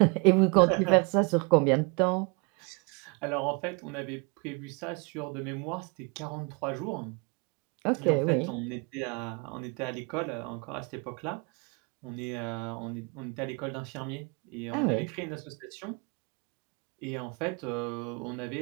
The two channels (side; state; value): left; quieter; 31.6 dB